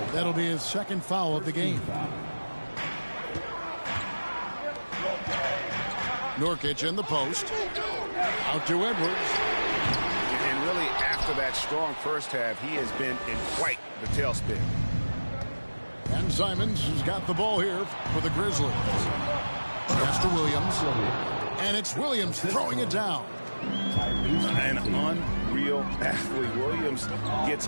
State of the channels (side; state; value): both; inverted; correlation -1.00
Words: That'll be his second foul of the game. Nurkic in the post. Out to Edwards. And really, after that strong first half, he has been in quite the tailspin. And Simons has got the ball here for the Grizzlies. Pass to Williams. And it's Williams throwing it down. An unreal athlete. Williams gets